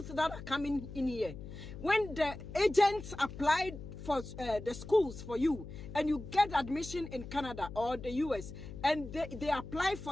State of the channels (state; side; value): noise; left; hum, 12 dB below the sound